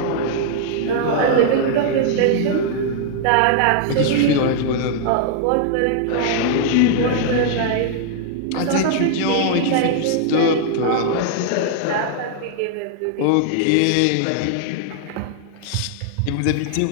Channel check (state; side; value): different; both; correlation -0.01